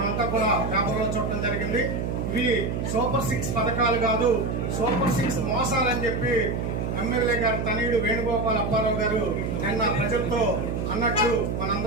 కూడా పేపర్లో చూడటం జరిగింది. ఇవి సూపర్ 6 పథకాలు కాదు, సూపర్ 6 మోసాలని చెప్పి ఎమ్మెల్యే గారు తనయుడు వేణుగోపాల్ అప్పారావు గారు నిన్న ప్రజలతో అన్నట్లు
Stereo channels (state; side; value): noise; right; hum, 2 dB below the sound